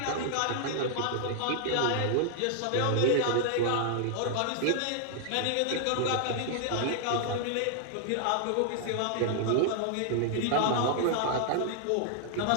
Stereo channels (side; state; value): both; different; correlation 0.00